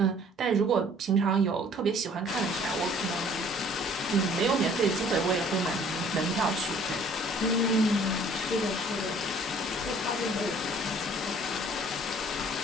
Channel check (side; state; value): both; normal; correlation 0.55